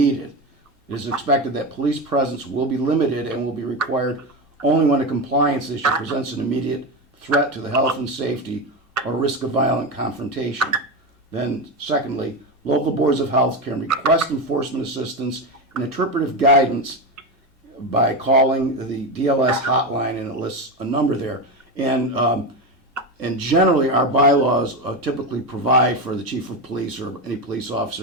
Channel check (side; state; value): both; normal; correlation 0.16